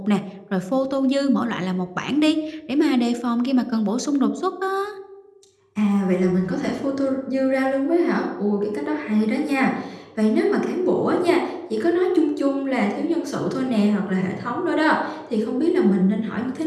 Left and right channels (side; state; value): both; identical; correlation 1.00